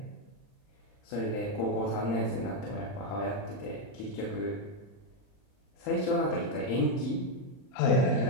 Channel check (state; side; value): late; right; 39 ms